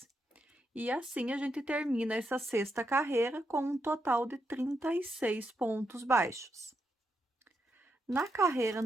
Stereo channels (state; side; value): normal; both; correlation 0.82